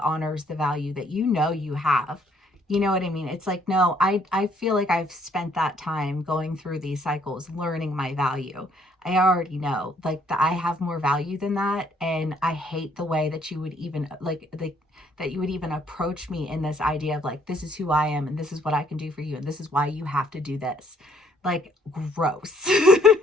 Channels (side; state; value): both; normal; correlation 0.65